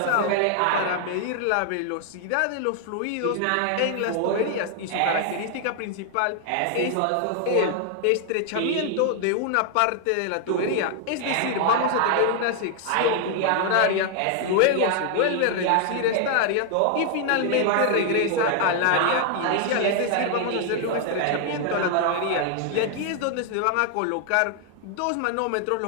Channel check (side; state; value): both; different; correlation 0.00